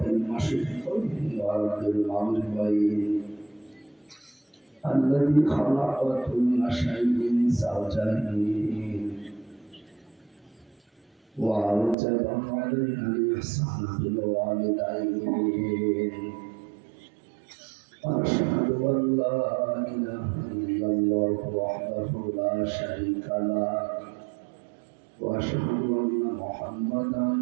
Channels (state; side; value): drops out; left; at 12.0 s